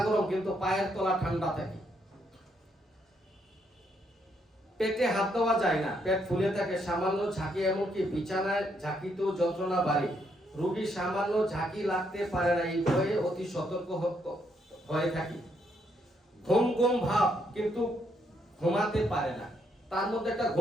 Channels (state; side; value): normal; both; correlation 0.74